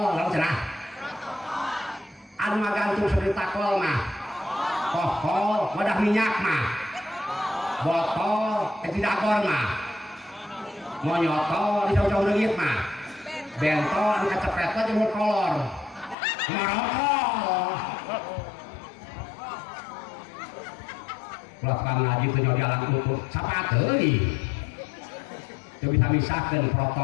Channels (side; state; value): right; drops out; at 16.2 s